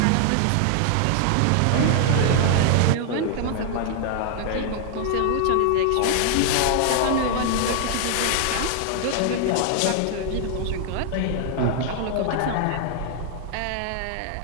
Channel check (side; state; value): both; different; correlation 0.00